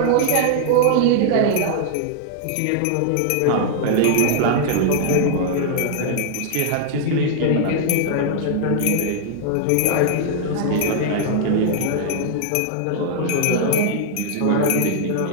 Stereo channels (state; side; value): different; both; correlation -0.01